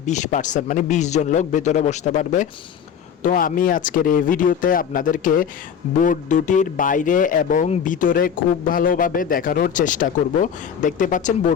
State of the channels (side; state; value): right; quieter; 7.9 dB